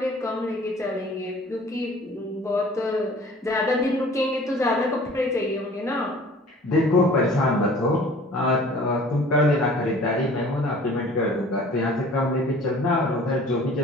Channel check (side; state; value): both; normal; correlation 0.49